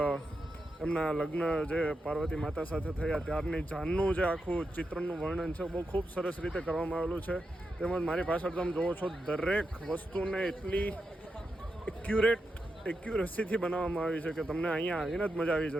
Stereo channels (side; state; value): both; normal; correlation 0.87